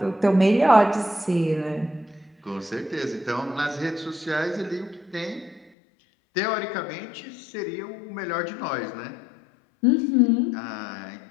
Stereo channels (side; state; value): right; drops out; at 5.7 s